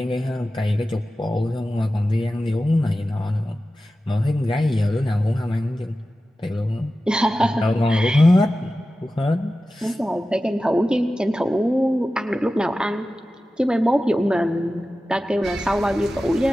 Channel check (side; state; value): both; normal; correlation 0.94